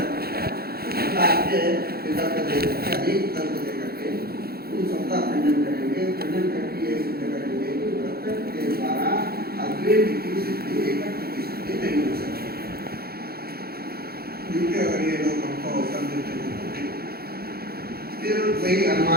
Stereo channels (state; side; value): late; left; 0.45 ms